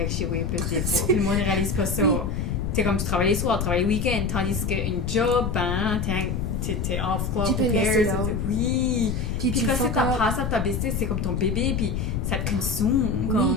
avec chez vous plus des fois. Puis le monde ne réalise pas ça. Oui. T'es comme tu travailles les soirs, tu travailles le week-end, tandis qu'une job, ben, t'es off club Tu peux pour laisser pairs. là. Oui. Puis tu quand c'est fuck ta up. passe à ta business, c'est comme ton bébé, puis ça te consomme.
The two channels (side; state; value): left; noise; rumble, 1 dB below the sound